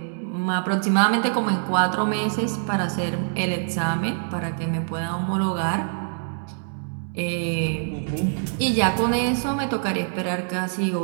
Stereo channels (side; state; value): left; silent; 62 dB below the other